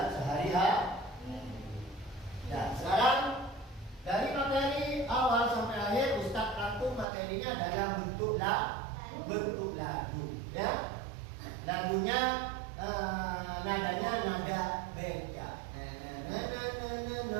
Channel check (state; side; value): drops out; left; at 7.1 s